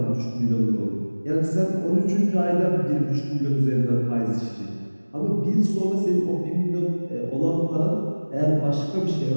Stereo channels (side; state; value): both; inverted; correlation -1.00